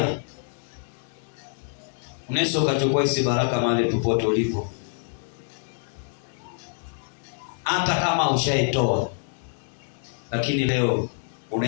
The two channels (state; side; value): silent; right; digital silence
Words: Unaweza ukachukua hizi baraka mahali popote ulipo. Hata kama ushaitoa, lakini leo